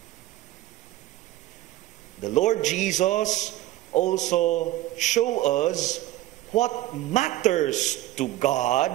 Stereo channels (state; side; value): quieter; left; 15.5 dB